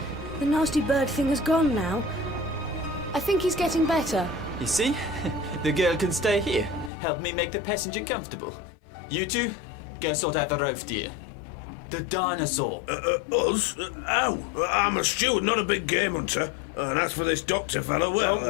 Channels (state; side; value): drops out; right; at 6.9 s